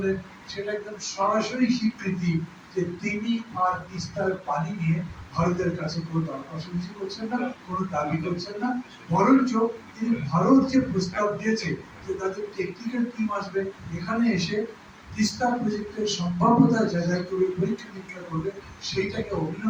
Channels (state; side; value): identical; both; correlation 1.00